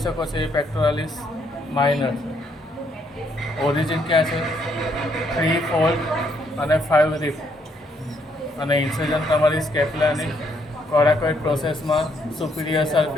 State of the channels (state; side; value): normal; both; correlation 0.72